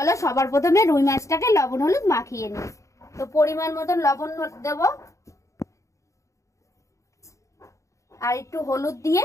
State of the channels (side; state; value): right; late; 0.15 ms